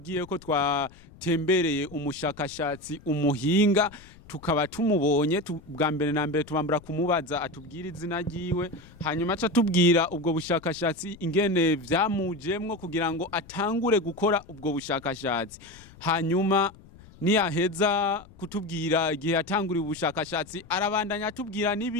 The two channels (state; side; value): noise; left; rumble, 22 dB below the sound